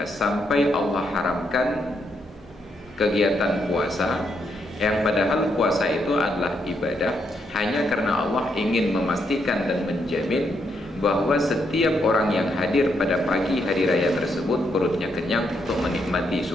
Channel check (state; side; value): normal; both; correlation 0.78